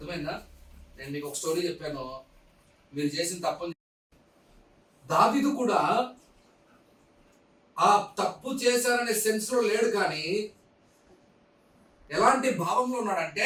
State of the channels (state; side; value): identical; both; correlation 1.00